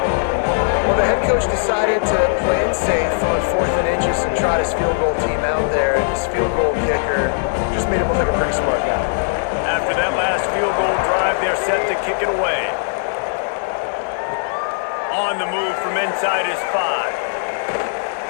Well, the head coach decided to play it safe on 4th and inches and trot his field goal team out there, and his field goal kicker just made him look like a pretty smart guy. After that last field goal drive, they're set to kick it away. On the move from inside his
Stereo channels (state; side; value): silent; right; digital silence